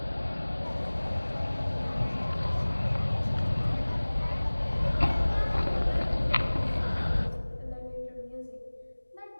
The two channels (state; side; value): inverted; both; correlation -1.00